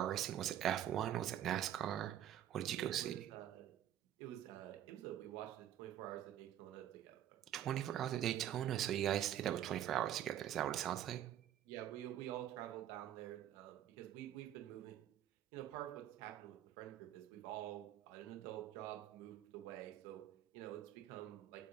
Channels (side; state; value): left; quieter; 11.3 dB